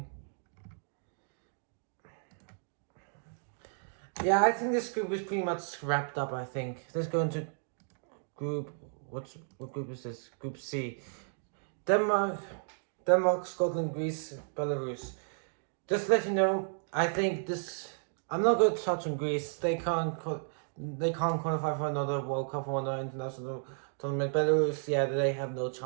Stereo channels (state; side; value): silent; left; digital silence